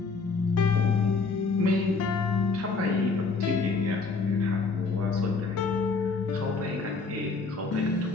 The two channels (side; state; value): right; quieter; 4.3 dB